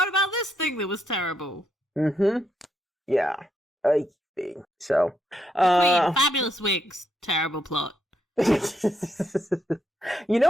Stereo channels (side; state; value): both; normal; correlation 0.77